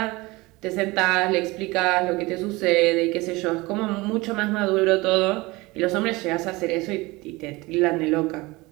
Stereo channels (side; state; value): left; quieter; 22.3 dB